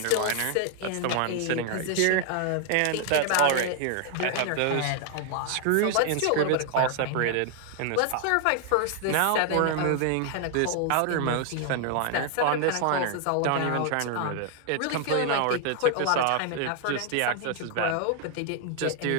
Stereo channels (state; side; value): different; both; correlation 0.00